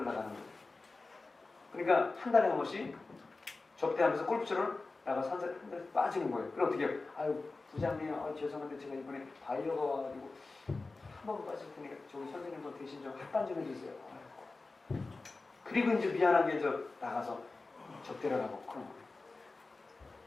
나가는 거예요. 그러니까 한 달에 한 번씩 접대하면서 골프처럼 나가서 한 달에 빠지는 거예요. 그럼 어떻게 해요? 아유 부장님 죄송한데 제가 이번에 바이어가 와가지고 한 번 빠질 테니까 저기 선생님도 대신 좀 합반 좀 해주세요. 그리고 이제 미안하게 나가서 접대를 하고 그런 거예요.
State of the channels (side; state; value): right; quieter; 3.6 dB